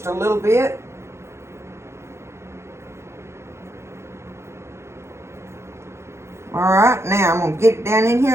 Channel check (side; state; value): left; late; 0.13 ms